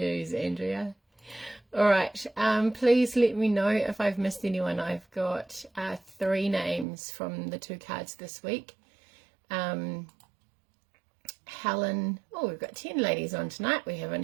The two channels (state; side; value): drops out; left; at 6.9 s